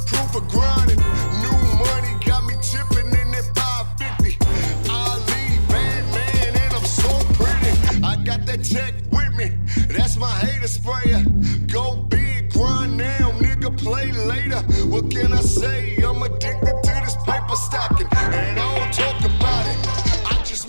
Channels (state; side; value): inverted; both; correlation -1.00